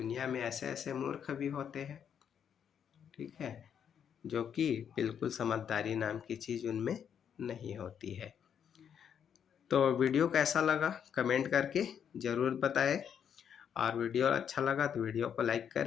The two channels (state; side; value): quieter; right; 8.2 dB